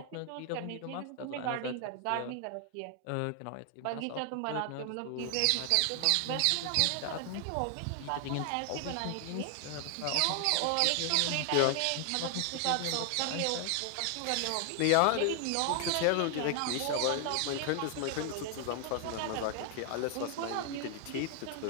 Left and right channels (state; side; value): different; both; correlation 0.00